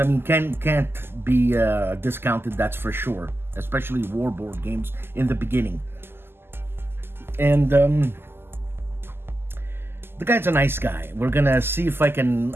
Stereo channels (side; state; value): left; late; 0.11 ms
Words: I mean, can't be discounted, that's for sure, especially war board games in the beginning. And the guy's a nice guy. We're gonna see if I can.